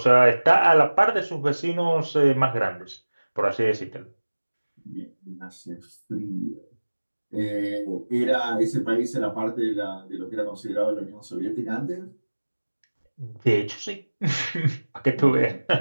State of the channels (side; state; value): both; inverted; correlation -1.00